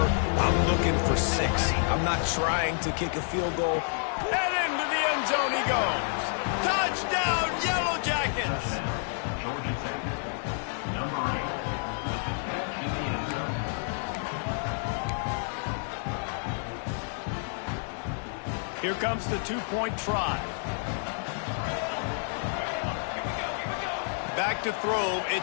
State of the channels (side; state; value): right; silent; 58 dB below the other